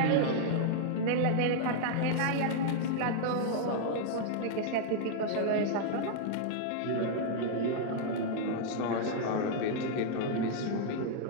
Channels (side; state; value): both; different; correlation -0.01